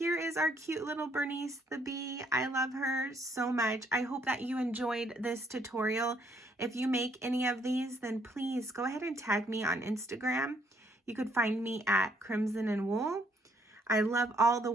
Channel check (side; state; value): both; normal; correlation 0.69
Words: is our cute little Bernice the Bee. I love her so much. I hope that you enjoyed this tutorial. If you make any of these, then please go ahead and tag me on Instagram. You could find me at Crimson and Wool. I love all the